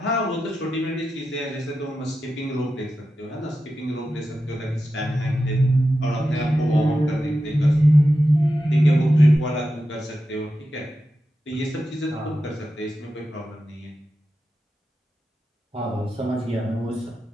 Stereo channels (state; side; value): normal; both; correlation 0.90